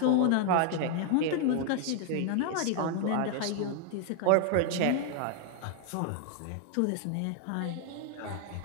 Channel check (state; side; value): different; both; correlation 0.00